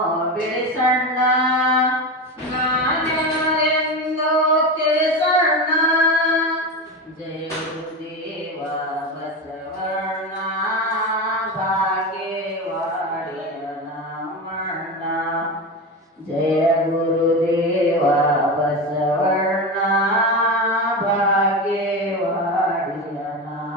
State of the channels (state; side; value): normal; both; correlation 0.21